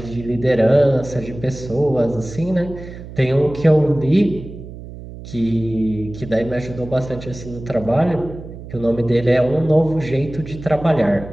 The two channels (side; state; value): right; noise; hum, 13 dB below the sound